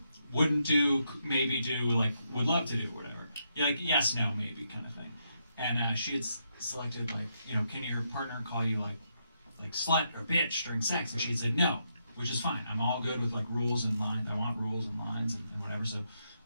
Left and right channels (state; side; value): inverted; both; correlation -0.80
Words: wouldn't do, maybe do, like, would love to do, whatever. You're like, yes, no, maybe kind of thing. And she had selected like, you know, can your partner call you like slut or bitch during sex? And she had said no, which is fine. I'm all good with like rules and lines. I want rules and lines and whatever. So